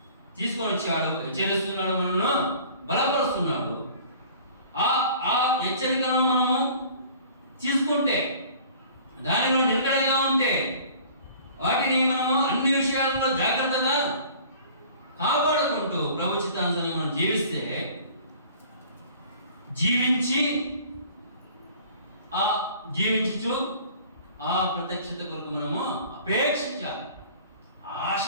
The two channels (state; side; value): inverted; both; correlation -0.48